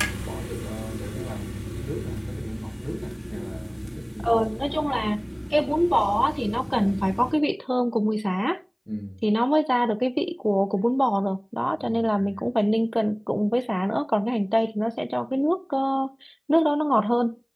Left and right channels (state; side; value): identical; both; correlation 1.00